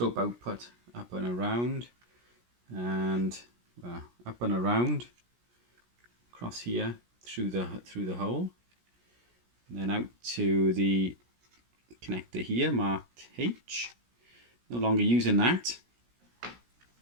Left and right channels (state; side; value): late; left; 17 ms